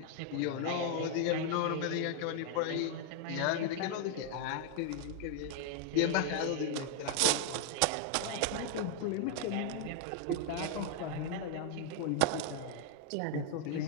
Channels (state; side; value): different; both; correlation 0.00